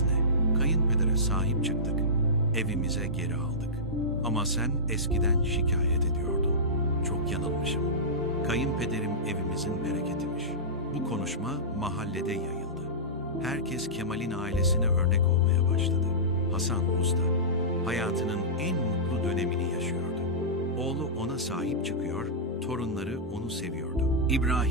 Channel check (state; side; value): normal; both; correlation -0.17